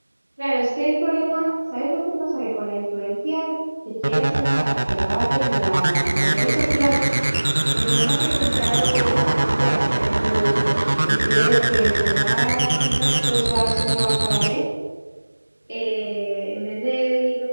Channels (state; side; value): inverted; both; correlation -1.00